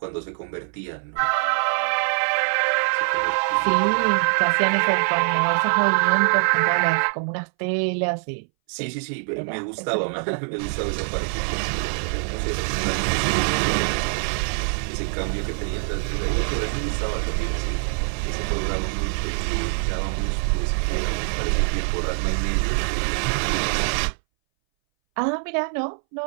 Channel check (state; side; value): silent; left; 62 dB below the other